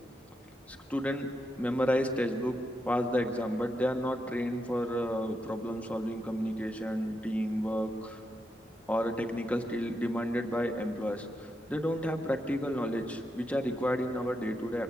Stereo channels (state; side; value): normal; both; correlation 0.84